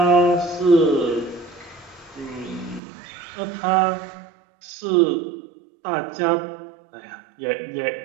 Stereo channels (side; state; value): left; drops out; at 2.8 s